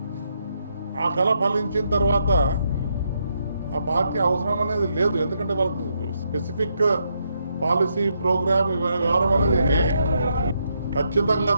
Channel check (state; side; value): inverted; both; correlation -0.78